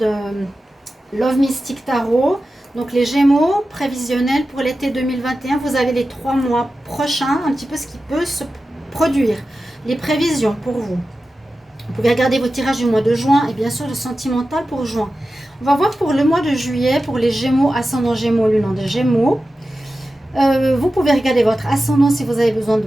Love Mystic Tarot. Donc, les Gémeaux prévisionnels pour l'été 2021, vous avez les 3 mois prochains, un petit peu ce qui peut se produire. Les prévisions pour vous. Vous pouvez regarder vos tirages du mois de juin et bien sûr le sentimental pour juin. On va voir pour le mois de juillet, pour les Gémeaux, ascendant Gémeaux, lune des Gémeaux. Vous pouvez regarder votre ascendant si vous avez besoin de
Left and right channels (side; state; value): both; normal; correlation 0.93